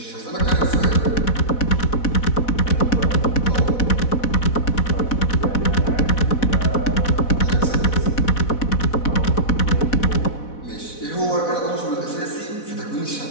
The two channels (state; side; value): late; right; 4.1 ms